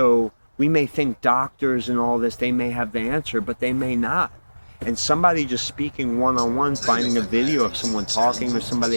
we may think doctors and all this, they may have the answer, but they may not. And somebody just speaking one-on-one, finding a video of someone talking or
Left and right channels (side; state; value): both; inverted; correlation -1.00